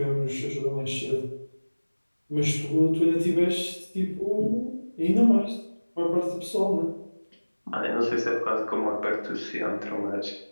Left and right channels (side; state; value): both; inverted; correlation -1.00